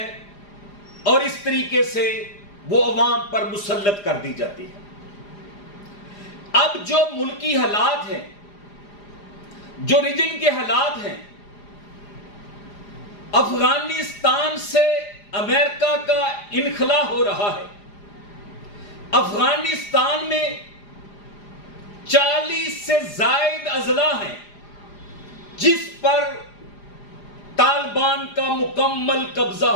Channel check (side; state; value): right; late; 4.9 ms